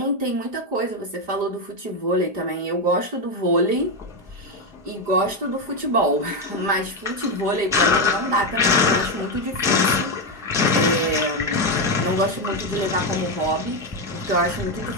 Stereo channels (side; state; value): left; late; 4.9 ms